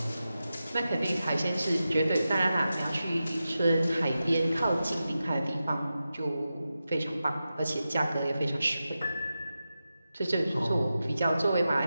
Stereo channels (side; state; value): both; inverted; correlation -0.92